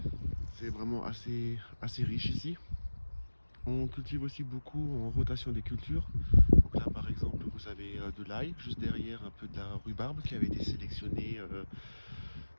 C'est vraiment assez riche ici. On cultive aussi beaucoup en rotation des cultures. Donc là par exemple vous avez de l'ail, juste derrière un peu de la rhubarbe qui avait été sélectionnée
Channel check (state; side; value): inverted; both; correlation -1.00